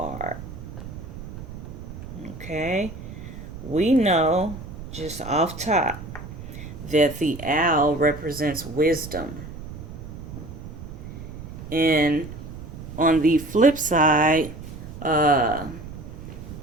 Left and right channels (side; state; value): right; noise; rumble, 11 dB below the sound